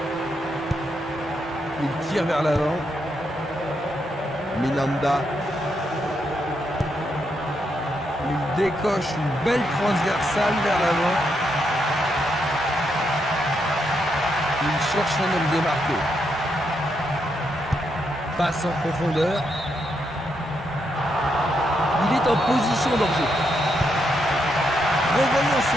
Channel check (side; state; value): both; normal; correlation 0.80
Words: Il tire vers l'avant. Minanda. Il décoche une belle transversale vers l'avant. Il cherche un homme démarqué. Passe en profondeur. Il est en position d'enjeu. Revoyons